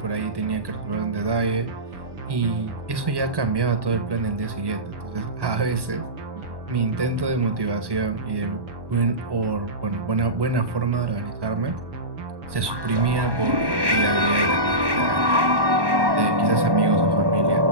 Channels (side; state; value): left; late; 1.1 ms